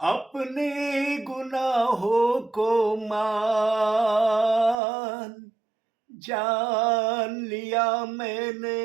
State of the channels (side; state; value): left; drops out; at 4.8 s